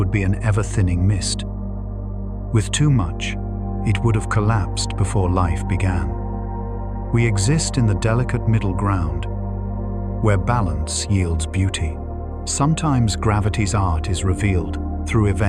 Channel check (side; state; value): both; identical; correlation 1.00